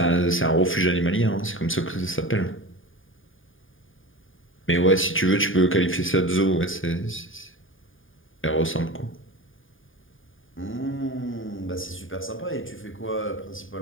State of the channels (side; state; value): right; late; 0.58 ms